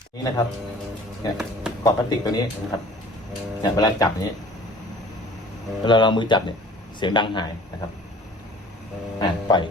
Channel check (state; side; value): normal; both; correlation 0.48